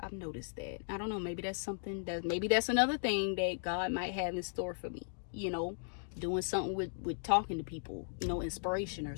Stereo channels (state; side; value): silent; right; digital silence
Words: noticed that. I don't know, maybe that's another thing that God might have in store for me, you know, doing something with talking to people, you know, inspiration or